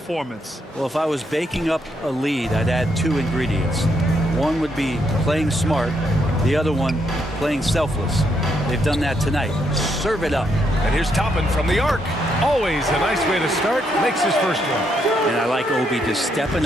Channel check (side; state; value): both; normal; correlation 0.76